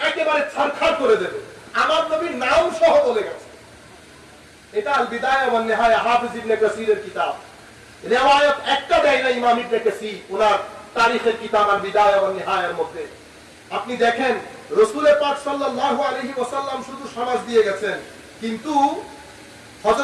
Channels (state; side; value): identical; both; correlation 1.00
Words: একেবারে ছারখার করে দেবে। আমার নবীর নাম সহ বলে গেছে। এটা আল বিদায়া ওয়ান নিহায়া, হাফিজ ইবনে কাসিরের কিতাব। রিওয়ায়াত একটা দেয় না ইমাম ইবনে কাসির ওনার তারিখের কিতাব আল বিদায়া ওয়ান নিহায়ার মধ্যে। আপনি দেখেন রাসূল পাক সাল্লাল্লাহু আলাইহি ওয়াসাল্লাম শুধু সমাজ দিয়ে গেছেন, কিন্তু